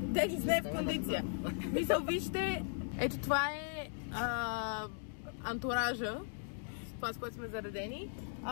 не е в кондиция. Мисъл, вижте, ето това е антуража. Това, с което сме заредени.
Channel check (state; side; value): silent; right; digital silence